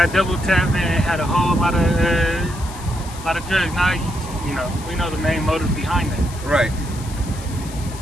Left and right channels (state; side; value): noise; left; hiss, 16 dB below the sound